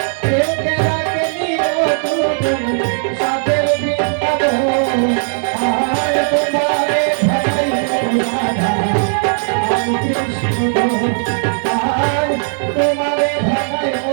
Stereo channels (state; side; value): silent; left; 66 dB below the other